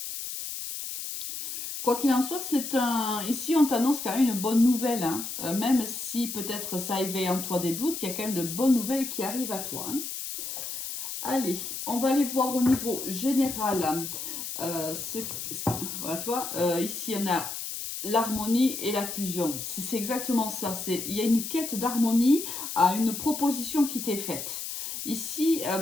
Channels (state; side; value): noise; left; hiss, 6 dB below the sound